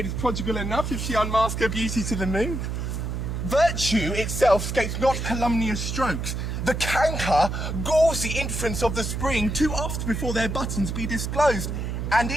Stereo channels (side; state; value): right; noise; hum, 3 dB below the sound